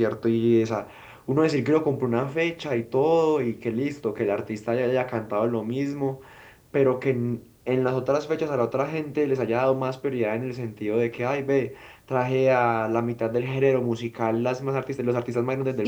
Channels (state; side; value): identical; both; correlation 1.00